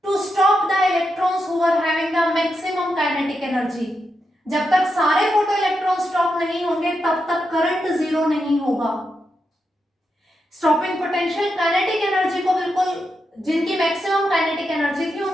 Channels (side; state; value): both; normal; correlation 0.85